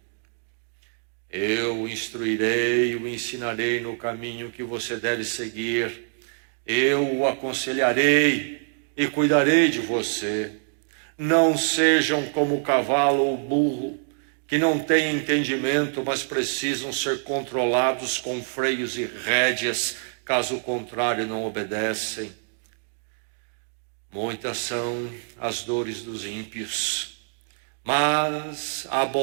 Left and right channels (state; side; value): silent; left; 61 dB below the other